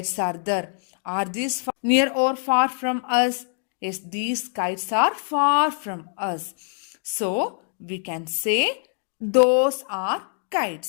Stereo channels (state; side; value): silent; right; 62 dB below the other